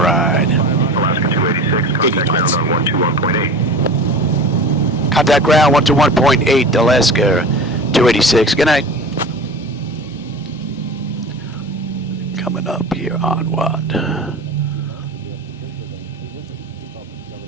Alaska 286, contact ground on 121.8. Contact ground 121.8, Alaska 286. Good night. Coming up here on what?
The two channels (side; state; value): both; normal; correlation 0.34